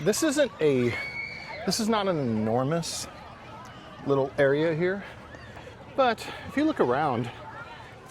this is not an enormous little area here, but if you look around,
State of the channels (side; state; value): both; identical; correlation 1.00